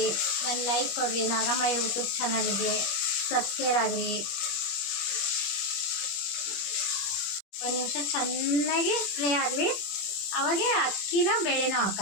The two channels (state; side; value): late; right; 21 ms